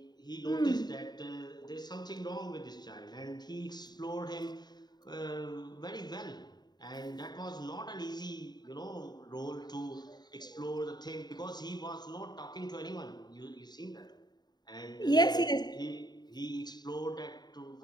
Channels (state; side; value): late; right; 0.20 ms